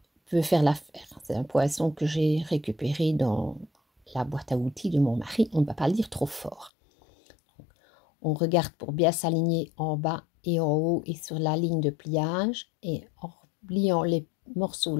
peut faire l'affaire. C'est un poinçon que j'ai récupéré dans la boîte à outils de mon mari. On ne va pas le dire trop fort. On regarde pour bien s'aligner en bas et en haut et sur la ligne de pliage, et en pliant les morceaux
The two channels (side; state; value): right; drops out; at 6.7 s